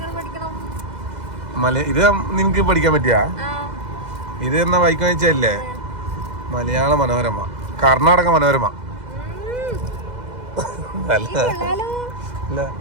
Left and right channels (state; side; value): late; left; 2.0 ms